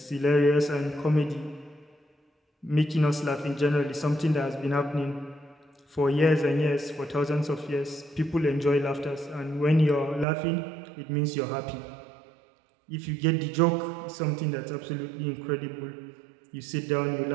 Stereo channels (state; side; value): drops out; left; at 10.2 s